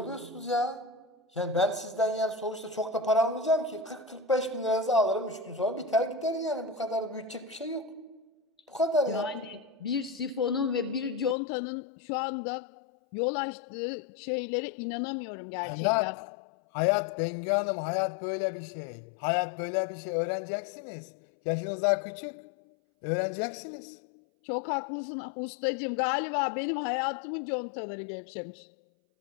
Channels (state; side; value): drops out; right; at 11.4 s